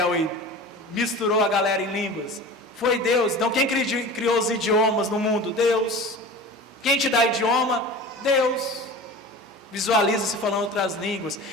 e misturou a galera em línguas? Foi Deus. Então quem criou os idiomas no mundo? Deus. Quem te dá idioma? Deus. Visualiza-se falando outras línguas.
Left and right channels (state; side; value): normal; both; correlation 0.36